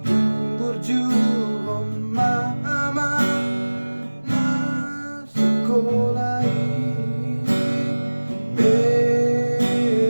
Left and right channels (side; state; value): both; inverted; correlation -1.00